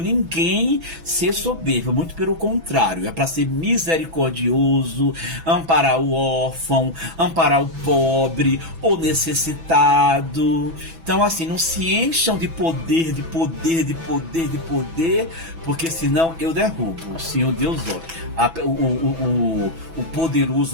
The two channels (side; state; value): left; late; 6.1 ms